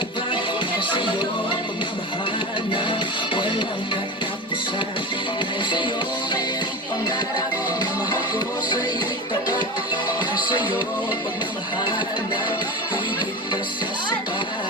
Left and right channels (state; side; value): normal; both; correlation 0.26